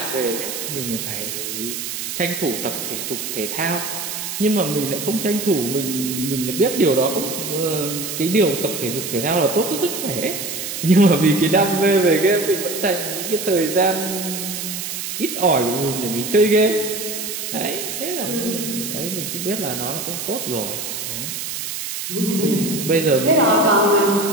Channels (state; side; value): noise; right; hiss, 5 dB below the sound